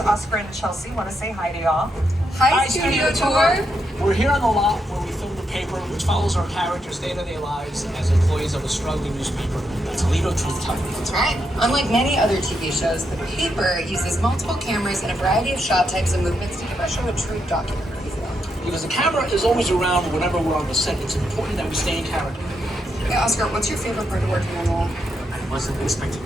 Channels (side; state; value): both; normal; correlation 0.81